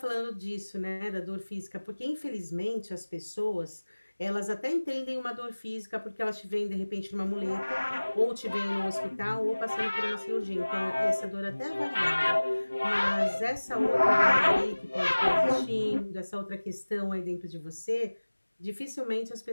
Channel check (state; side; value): inverted; both; correlation -1.00